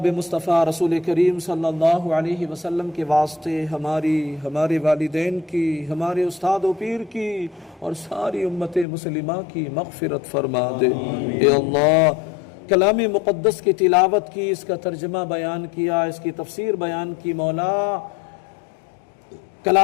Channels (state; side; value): drops out; right; at 8.8 s